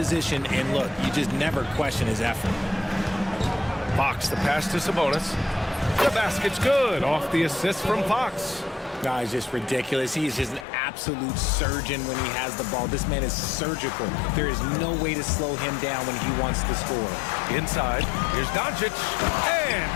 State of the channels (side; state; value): right; drops out; at 10.7 s